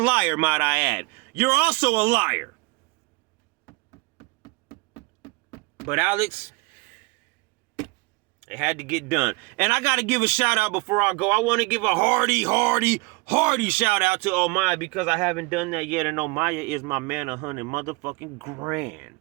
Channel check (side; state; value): left; quieter; 26.3 dB